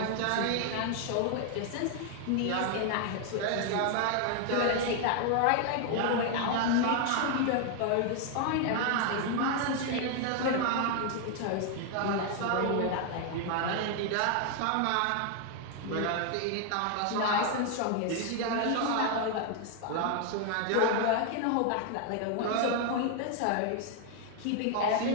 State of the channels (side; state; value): both; different; correlation 0.00